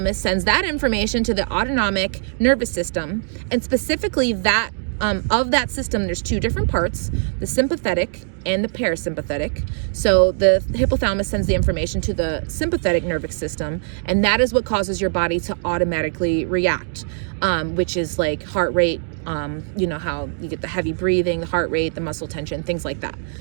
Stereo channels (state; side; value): silent; left; digital silence